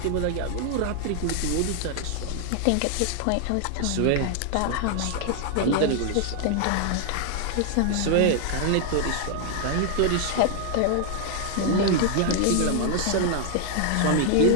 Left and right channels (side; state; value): both; different; correlation 0.00